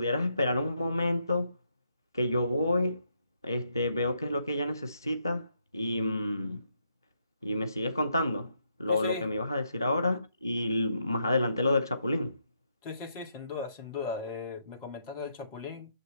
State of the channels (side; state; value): both; inverted; correlation -0.77